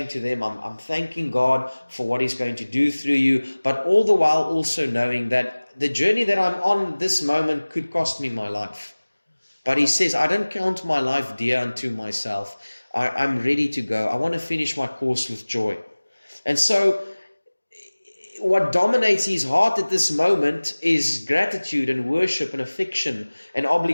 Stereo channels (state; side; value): inverted; both; correlation -1.00